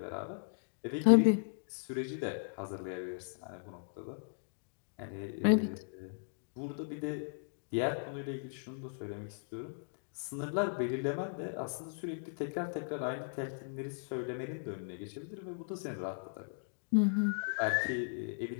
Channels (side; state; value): right; silent; digital silence